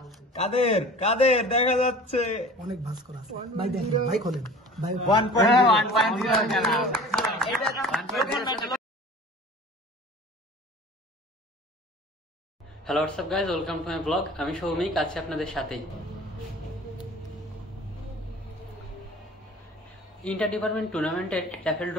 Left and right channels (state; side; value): normal; both; correlation 0.43